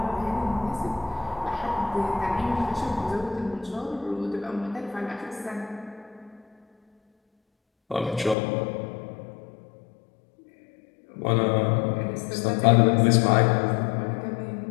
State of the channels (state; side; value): drops out; right; at 8.3 s